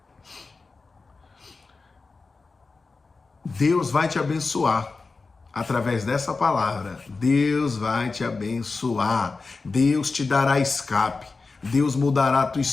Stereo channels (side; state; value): right; quieter; 4.1 dB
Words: Deus vai te abençoar através dessa palavra. Deus vai te abençoar. Deus te dará escape. Deus mudará a tua